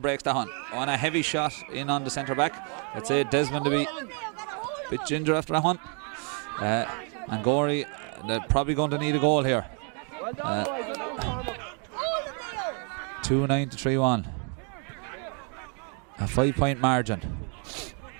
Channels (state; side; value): quieter; left; 39.0 dB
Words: breaks that one. On a heavy shot in on the centre back. Let's say Desmond to be a bit ginger after that one. And Gorey, they're probably going to need a goal here. 2-9 to 3-1. A 5-point margin.